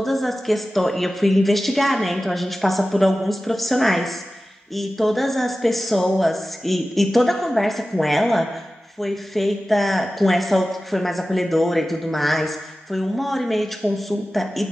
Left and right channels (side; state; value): both; normal; correlation 0.95